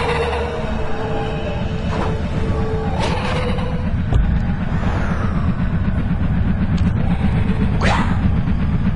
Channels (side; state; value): both; identical; correlation 1.00